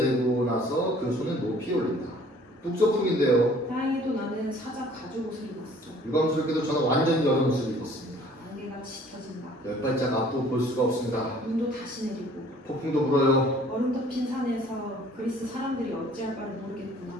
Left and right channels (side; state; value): both; normal; correlation 0.54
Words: 나서 그 손을 높이 올린다. 북서풍인데요. 다행히도 나는 사자 가죽 옷을 입었어. 유감스럽게도 저는 완전히 여름 옷을 입었습니다. 안개가 짙어진다. 10발짝 앞도 볼 수가 없습니다. 눈도 다시 내리고 폭풍도 불어요. 얼음 덮인 산에서 그리스 사람들이 어찌할 바를 모르겠구나.